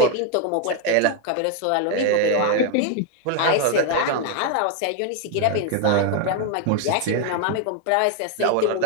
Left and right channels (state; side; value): different; both; correlation 0.01